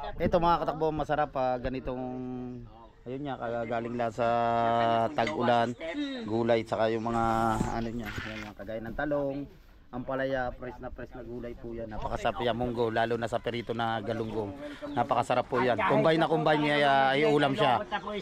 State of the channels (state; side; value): identical; both; correlation 1.00